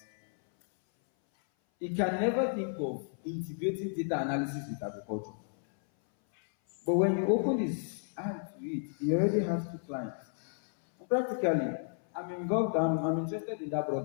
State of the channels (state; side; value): silent; right; 56 dB below the other